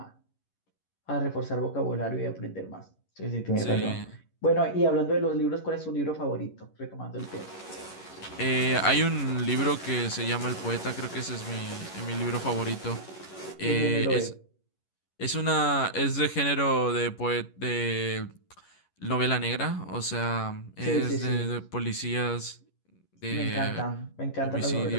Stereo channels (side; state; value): right; late; 11 ms